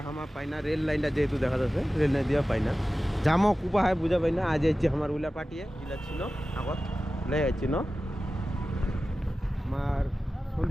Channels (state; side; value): normal; both; correlation 0.95